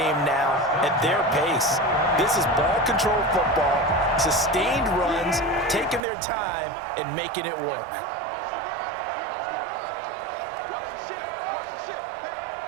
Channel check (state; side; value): drops out; left; at 6.0 s